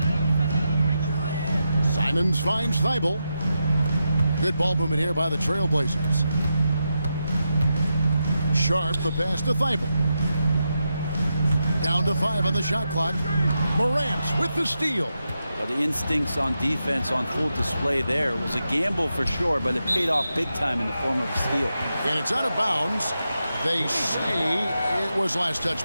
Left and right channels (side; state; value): both; inverted; correlation -0.87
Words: Simons finds Thibault. Good ball movement here by the Trailblazers. Sharp the pass to Thibault. Down to 5 on the shot clock. Morant with the steal. Well, the instincts on defense on full display there. It was a gamble for sure, but it paid off big time in the form of a steal. And it's out of bounds. They say it was last touched